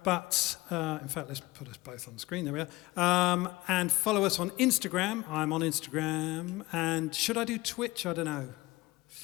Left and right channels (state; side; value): quieter; right; 20.2 dB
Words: in fact, let's put us both on the screen. There we are. And follow us on Instagram. I'm on Instagram. And should I do Twitch? I don't know.